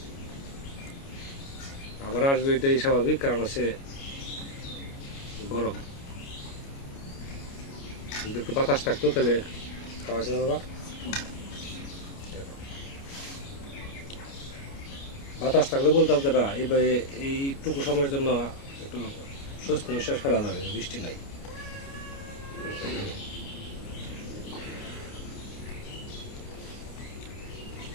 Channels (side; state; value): right; late; 29 ms